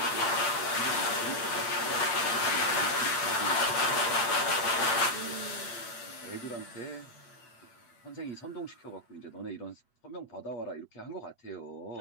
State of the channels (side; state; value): right; late; 8.0 ms